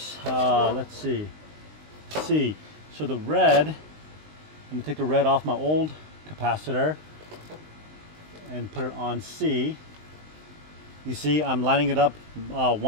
let's see, C. So the red, I'm going to take the red off my old capacitor and put it on C. You see, I'm lining it up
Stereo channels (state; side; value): late; left; 19 ms